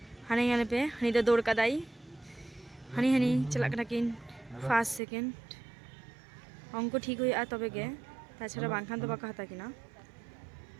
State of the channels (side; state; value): left; drops out; at 5.0 s